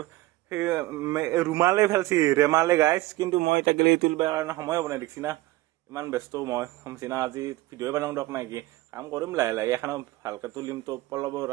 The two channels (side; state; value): left; quieter; 18.5 dB